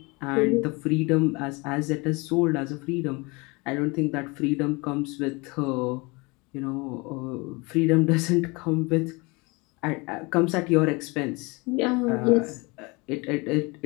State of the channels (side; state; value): right; quieter; 26.6 dB